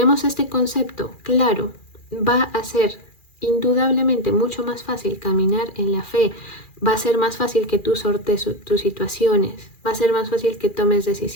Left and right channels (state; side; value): late; right; 2.4 ms